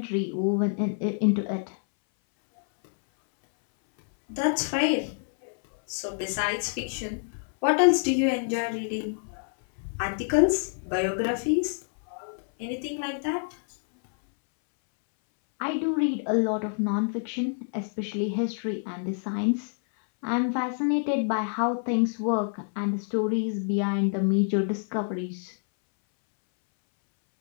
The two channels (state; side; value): silent; right; 60 dB below the other